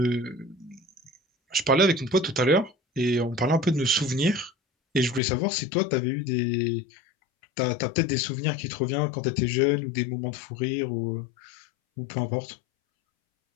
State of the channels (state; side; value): drops out; right; at 5.2 s